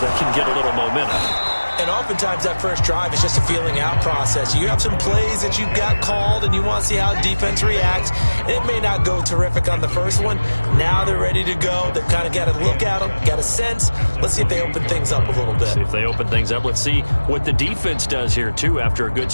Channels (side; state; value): both; inverted; correlation -1.00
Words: can get a little momentum. And oftentimes that first drive is just a feeling out process. You have some plays that you've got called and you want to see how defense reacts. It may not go terrific on the first one. Now they're ready to go. They've kind of got to look at them, got a sense. Let's see if they open things up a little bit. See if they open things up. Let's see what the defense does here, too, after a good